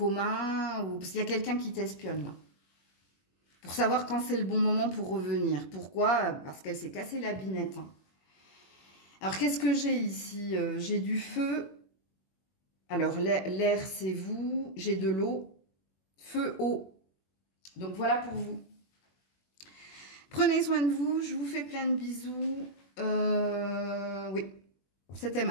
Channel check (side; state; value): right; late; 21 ms